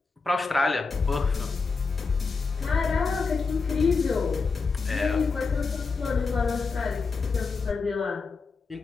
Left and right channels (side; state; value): right; quieter; 4.5 dB